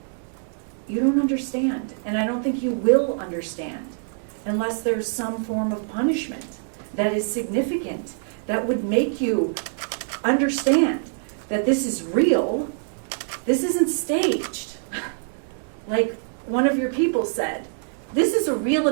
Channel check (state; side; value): silent; left; digital silence